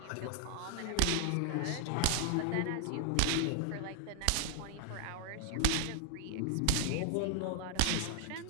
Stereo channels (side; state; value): both; different; correlation 0.00